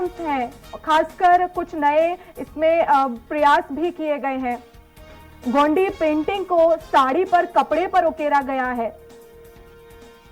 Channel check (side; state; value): both; identical; correlation 1.00